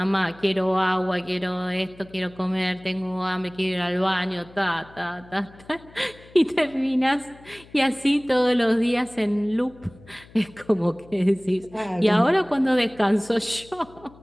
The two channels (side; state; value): left; noise; hum, 23 dB below the sound